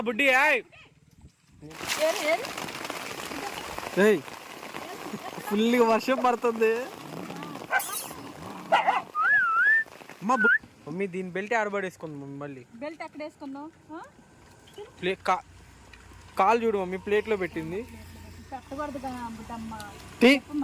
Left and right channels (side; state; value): both; identical; correlation 1.00